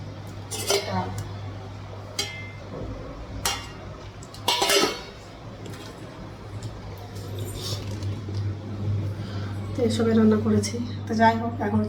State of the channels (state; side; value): identical; both; correlation 1.00